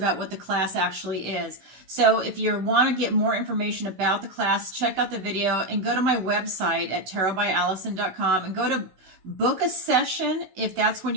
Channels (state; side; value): late; left; 16 ms